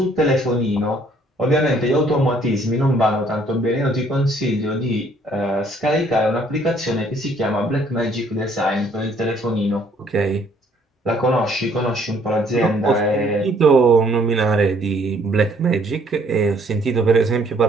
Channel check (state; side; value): normal; both; correlation 0.63